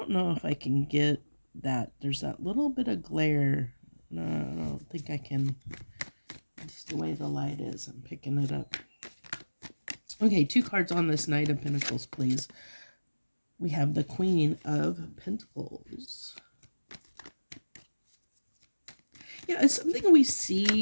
know if I can get that. There's that little bit of glare. No, I don't think I can. It's the way the light is. I'm picking it up. Okay, 2 cards on this Knight of Pentacles, please. We have the Queen of Pentacles. Yeah, it's something we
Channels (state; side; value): inverted; both; correlation -1.00